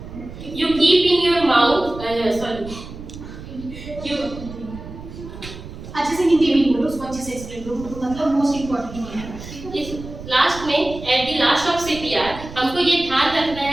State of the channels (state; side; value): noise; right; rumble, 13 dB below the sound